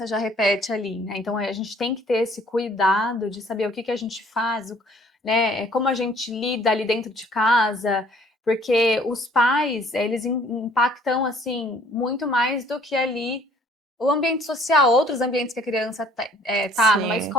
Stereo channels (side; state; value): both; normal; correlation 0.57